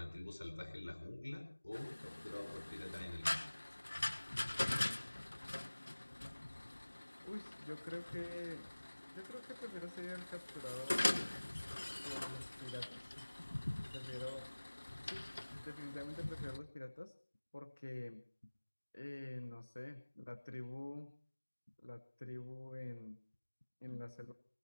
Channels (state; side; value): inverted; both; correlation -1.00